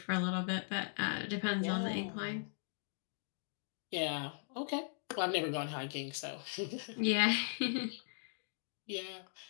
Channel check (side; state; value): right; silent; digital silence